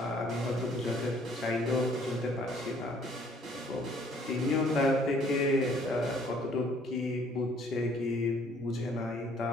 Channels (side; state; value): both; normal; correlation 0.60